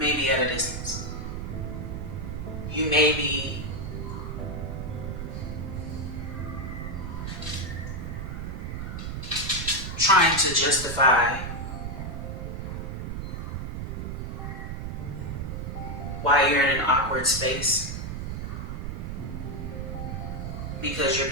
be at a distance. You may be trying to justify why you're in an awkward space, because you're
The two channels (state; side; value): noise; right; rumble, 5 dB below the sound